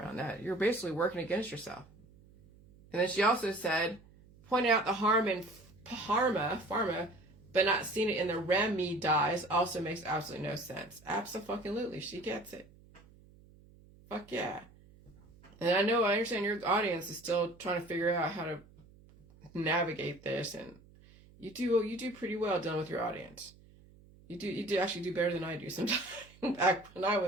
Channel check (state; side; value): noise; right; hum, 25 dB below the sound